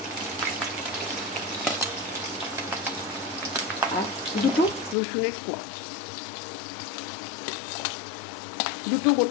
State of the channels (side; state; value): right; drops out; at 5.0 s